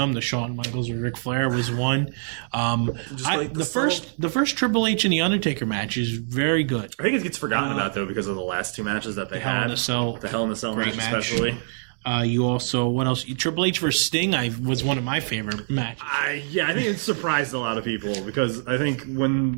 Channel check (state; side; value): silent; left; digital silence